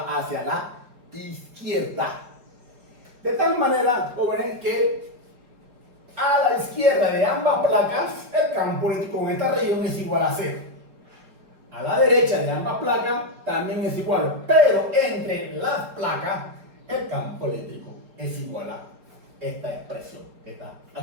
hacia la izquierda. De tal manera, jóvenes, que a la izquierda de ambas placas, el campo eléctrico en esta región es igual a 0. A la derecha de ambas placas también es igual, pero entre las placas, el campo eléctrico es igual a esta expresión que está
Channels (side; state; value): left; late; 4.1 ms